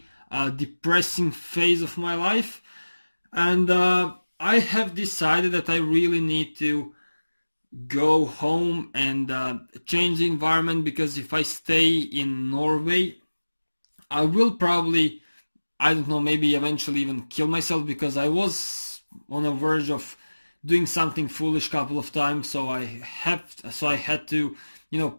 depressing phase of my life, and I have decided that I really need to go home and change the environment, because if I stay in Norway, I will probably, I don't know, maybe eventually even kill myself, because I was on the verge of doing something foolish a couple of times. So I had to,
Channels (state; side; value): inverted; both; correlation -1.00